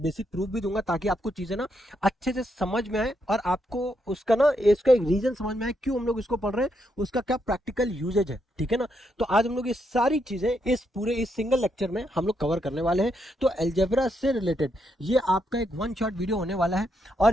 बेसिक प्रूफ भी दूंगा, ताकि आपको चीजें अच्छे से समझ में आए, और आपको उसका इसका एक रीजन समझ में आए क्यों हम लोग इसको पढ़ रहे हैं, उसका क्या प्रैक्टिकल यूजेज है, ठीक है ना। तो आज हम लोग ये सारी चीजें इस सिंगल लेक्चर में हम लोग कवर करने वाले हैं। तो एल्जेब्रा से रिलेटेड ये आपका एक वन शॉट वीडियो होने वाला है,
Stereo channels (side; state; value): both; normal; correlation 0.79